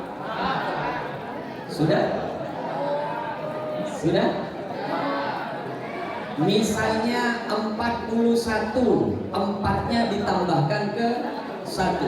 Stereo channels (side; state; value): both; identical; correlation 1.00